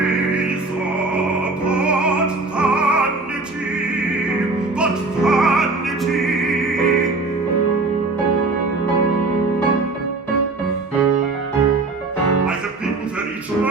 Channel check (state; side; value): quieter; left; 3.4 dB